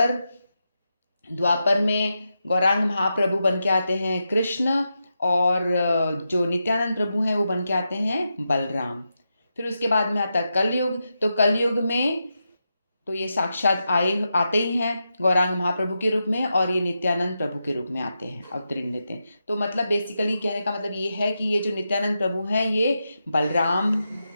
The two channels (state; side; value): inverted; both; correlation -0.87